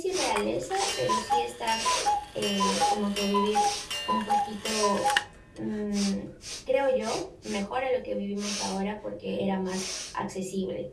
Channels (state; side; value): identical; both; correlation 1.00